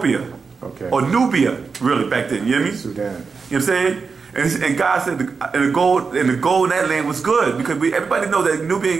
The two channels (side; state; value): left; quieter; 5.1 dB